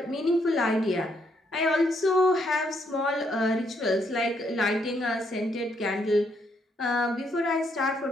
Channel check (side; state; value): both; normal; correlation 0.73